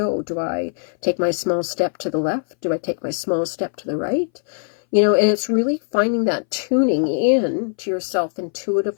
Do I take my small step to the left? Do I take my small step to the right? You know, and it's really finding that tuning in to yourself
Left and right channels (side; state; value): right; silent; 61 dB below the other